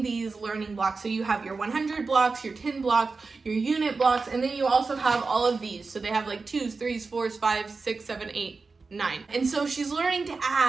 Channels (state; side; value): quieter; left; 4.2 dB